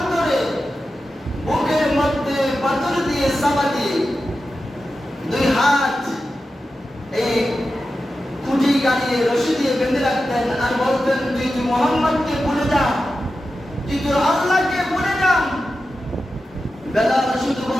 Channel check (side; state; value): both; normal; correlation 0.92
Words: বুকের মধ্যে পাথর দিয়ে চাপা দিয়ে দুই হাত এই খুঁটি গাড়িয়ে রশি দিয়ে বেঁধে রাখতেন আর বলতেন, তুই মোহাম্মদকে ভুলে যা, তুই তোর আল্লাহকে ভুলে যা। বেলাল শুধু